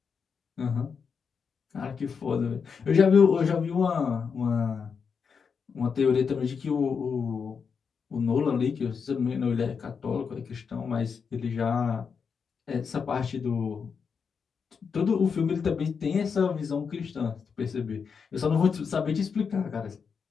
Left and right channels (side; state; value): right; quieter; 6.0 dB